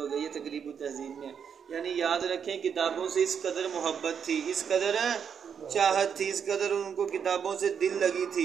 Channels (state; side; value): quieter; left; 7.4 dB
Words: گیا. یہ تقریب التہذیب میں. یعنی یاد رکھیں کتابوں سے اس قدر محبت تھی، اس قدر چاہت تھی، اس قدر ان کو کتابوں سے دل لگی